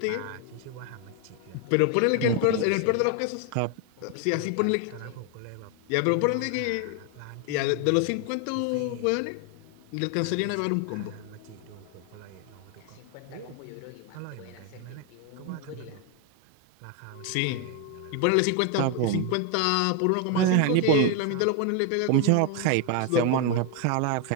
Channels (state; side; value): different; both; correlation 0.01